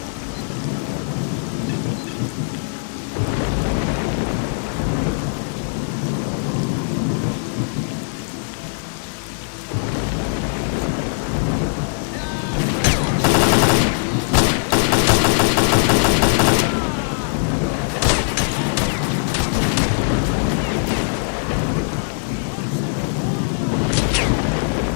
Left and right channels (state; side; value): silent; right; digital silence